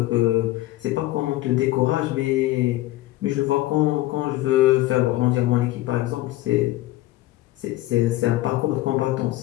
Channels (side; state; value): right; quieter; 16.7 dB